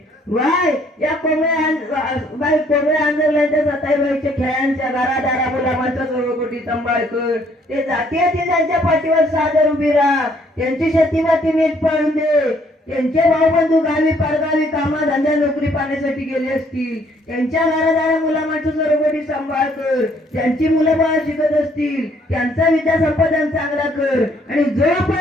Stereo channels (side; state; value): both; normal; correlation 0.65